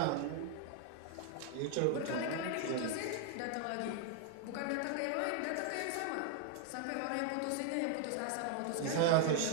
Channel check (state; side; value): different; both; correlation 0.00